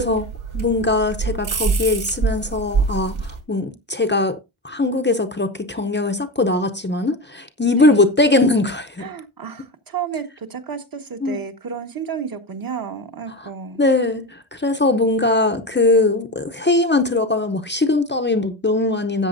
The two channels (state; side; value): normal; both; correlation 0.22